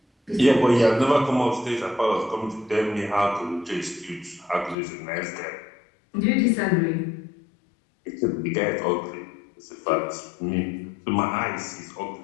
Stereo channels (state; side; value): drops out; right; at 4.8 s